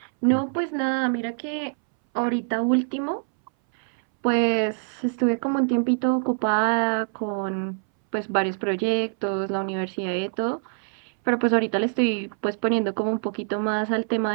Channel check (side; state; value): left; silent; 62 dB below the other